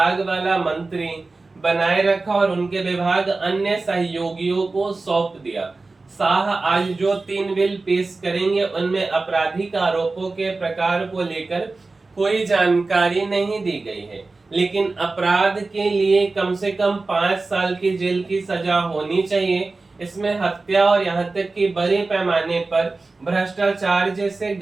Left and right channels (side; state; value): left; quieter; 3.6 dB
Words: वाला मंत्री बनाए रखा और उनके विभाग अन्य सहयोगियों को सौंप दिया। शाह आज जो 3 बिल पेश करेंगे उनमें आपराधिक आरोपों के प्रकार को लेकर कोई जानकारी नहीं दी गई है, लेकिन अपराध के लिए कम से कम 5 साल की जेल की सजा होनी चाहिए। इसमें हत्या और यहाँ तक कि बड़े पैमाने पर भ्रष्टाचार जैसे